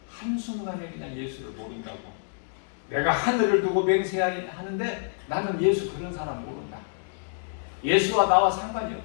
한순간에 그냥 예수를 모른다고. 내가 하늘을 두고 맹세하는데 나는 예수 그런 사람 모른다. 예수와 나와 상관이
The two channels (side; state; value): right; silent; digital silence